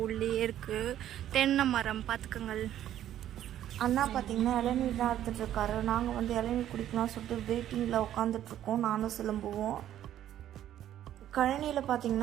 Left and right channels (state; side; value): quieter; left; 11.7 dB